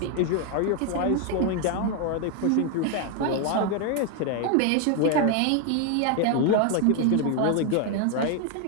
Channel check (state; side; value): different; both; correlation 0.01